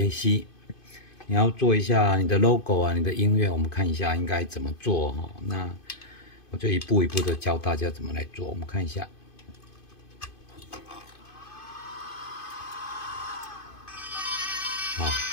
你要做一下你的 logo 啊，你的音乐，我们看一下应该怎么做哈。那我就一步一步的教大家怎么来做，我们看一下。好，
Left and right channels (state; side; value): late; right; 2.5 ms